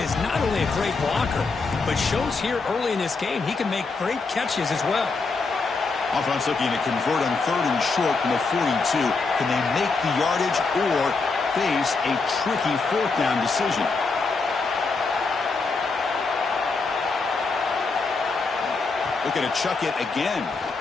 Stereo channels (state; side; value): quieter; right; 4.1 dB